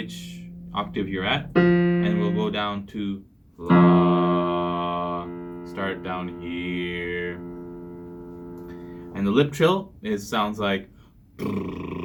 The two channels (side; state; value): both; identical; correlation 1.00